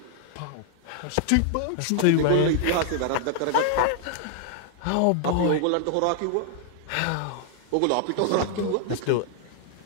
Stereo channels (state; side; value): different; both; correlation 0.00